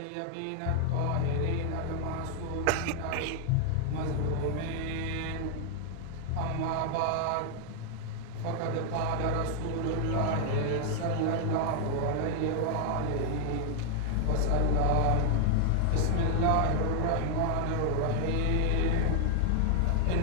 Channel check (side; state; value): both; different; correlation 0.00